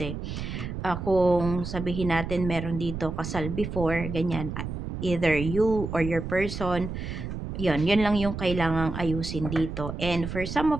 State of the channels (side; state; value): right; noise; rumble, 6 dB below the sound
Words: kung sabihin natin meron dito kasal before, ganyan, either you or your person, yun lang yung kailangang ayusin dito. And for some